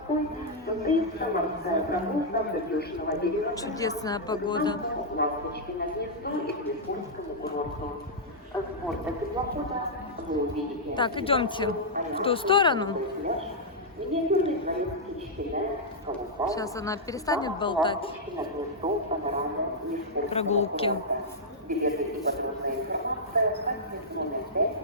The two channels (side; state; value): both; normal; correlation -0.07